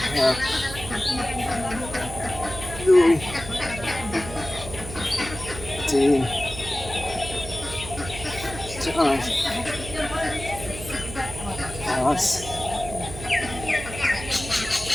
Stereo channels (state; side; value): noise; right; hum, 11 dB below the sound